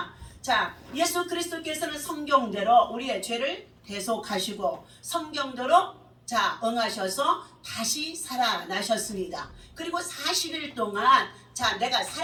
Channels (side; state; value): both; identical; correlation 1.00